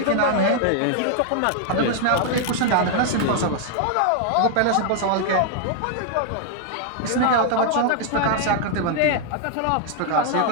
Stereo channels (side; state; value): both; different; correlation 0.00